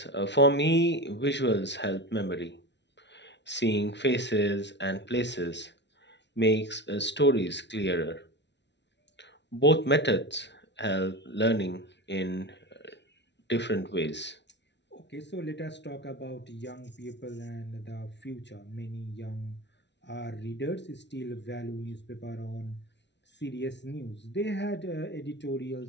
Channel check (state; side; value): late; right; 0.51 ms